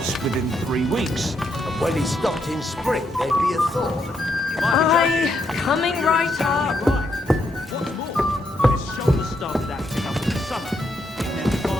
within 3 weeks. And when he stopped in spring, there'd be a thaw. Aye, coming right up. What's more, when his shoulder started acting up in the summer, it meant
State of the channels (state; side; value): normal; both; correlation 0.78